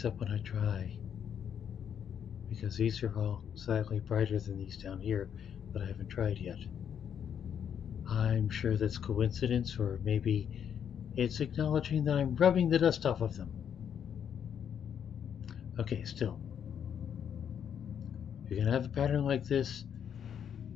up when I try. Because these are all slightly brighter than these down here that I haven't tried yet. I'm sure that's coincidence, or maybe it's acknowledging that I'm rubbing the dust off of them. Okay, still. If you're going to have a pattern like this,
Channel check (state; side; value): quieter; right; 8.4 dB